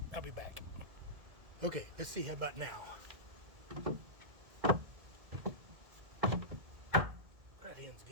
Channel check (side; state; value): left; late; 2.0 ms